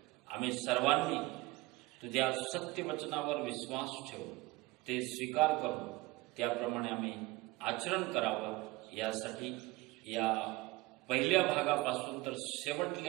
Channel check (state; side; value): quieter; left; 21.0 dB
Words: आम्ही सर्वांनी तुझ्या सत्य वचनावर विश्वास ठेवून ते स्वीकार करून त्याप्रमाणे आम्ही आचरण करावं, यासाठी या पहिल्या भागापासून तर